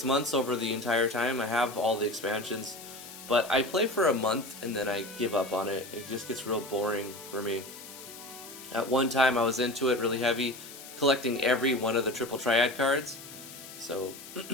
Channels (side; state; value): left; noise; hiss, 15 dB below the sound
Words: months over the entire time. I have all the expansions, but I play for a month and then I give up on it. It just gets real boring for me. At one time I was into it really heavy, collecting every one of the triple triad cards. So